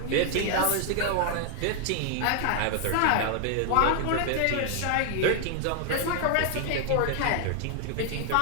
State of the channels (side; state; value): both; different; correlation 0.00